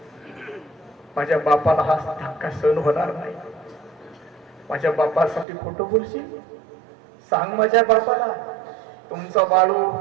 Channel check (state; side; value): drops out; left; at 5.5 s